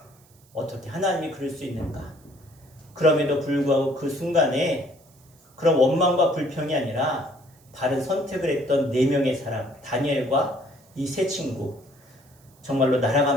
어떻게 하나님이 그럴 수 있는가? 그럼에도 불구하고 그 순간에 그런 원망과 불평이 아니라 바른 선택을 했던 4명의 사람, 다니엘과 이 세 친구, 정말로 나라가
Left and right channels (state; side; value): noise; right; hiss, 30 dB below the sound